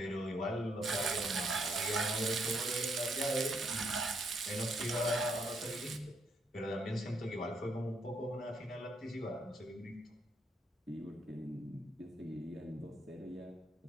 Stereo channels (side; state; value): both; normal; correlation 0.73